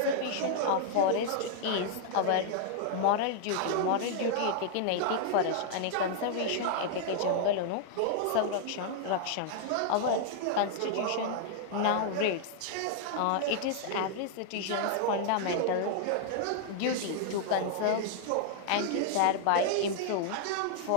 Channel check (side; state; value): both; different; correlation -0.01